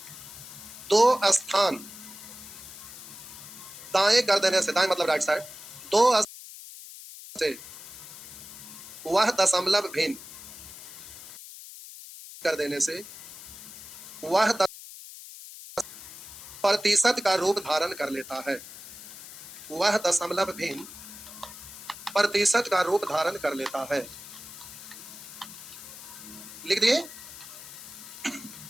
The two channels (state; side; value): noise; left; hiss, 14 dB below the sound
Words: 2 स्थान दाएं कर देने से, दाएं मतलब राइट साइड, 2 से वह दशमलव भिन्न कर देने से वह प्रतिशत का रूप धारण कर लेता है। वह दशमलव भिन्न प्रतिशत का रूप धारण कर लेता है। लिख दिए,